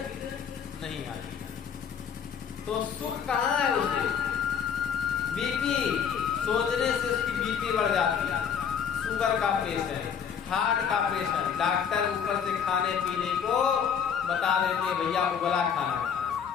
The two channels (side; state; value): right; quieter; 7.5 dB